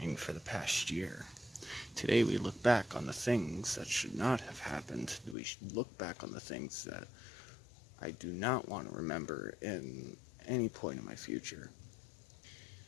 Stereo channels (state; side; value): drops out; right; at 5.4 s